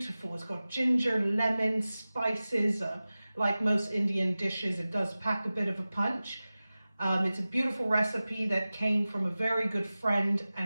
It's got ginger, lemon, spices. Like most Indian dishes, it does pack a bit of a punch. It's a beautiful recipe that came from a very good friend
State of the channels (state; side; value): inverted; both; correlation -0.97